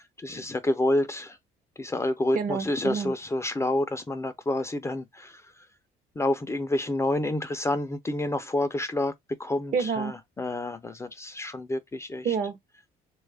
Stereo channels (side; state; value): both; normal; correlation 0.76